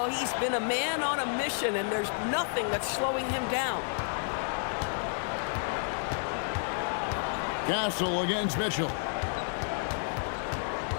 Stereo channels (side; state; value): right; silent; digital silence